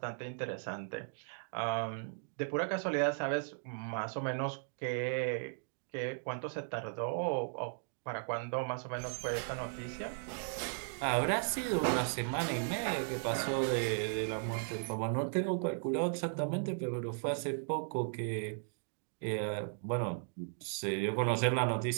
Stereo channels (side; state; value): left; silent; digital silence